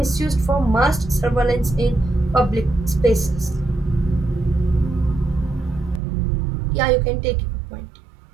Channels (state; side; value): drops out; left; at 6.0 s